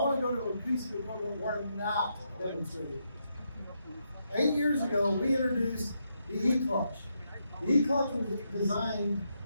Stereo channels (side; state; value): both; inverted; correlation -0.81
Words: to go to a piece of equipment we're not demonstrating. 8 years ago, we introduced the eClutch. The eClutch was designed